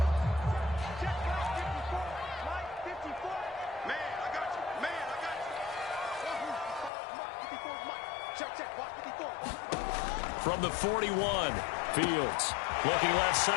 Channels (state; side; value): drops out; right; at 6.9 s